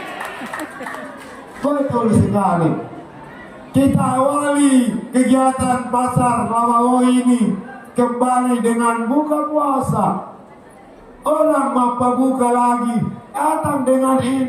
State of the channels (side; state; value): both; identical; correlation 1.00